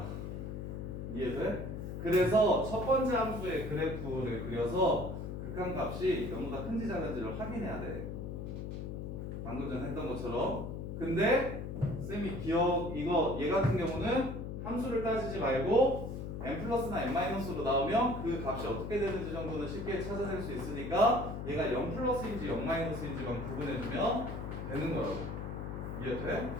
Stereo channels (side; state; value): left; noise; hum, 6 dB below the sound